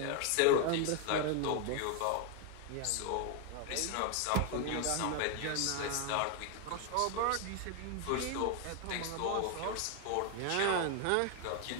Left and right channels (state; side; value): different; both; correlation 0.01